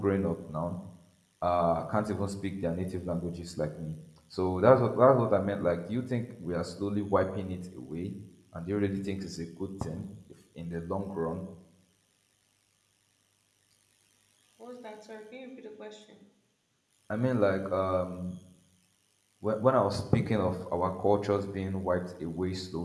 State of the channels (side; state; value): both; identical; correlation 1.00